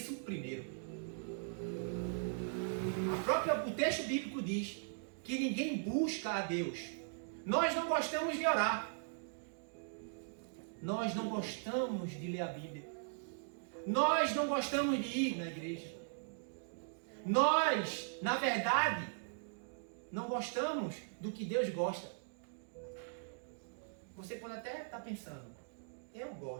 primeiro. O texto bíblico diz que ninguém busca a Deus. Nós não gostamos de orar. Nós não gostamos de ler a Bíblia. Nós não gostamos de ir na igreja. Nós, na verdade, não gostamos do que Deus gosta. Você pode até estar pensando, eu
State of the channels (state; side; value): silent; left; digital silence